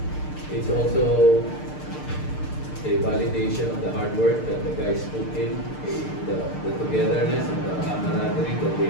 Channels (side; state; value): right; late; 6.6 ms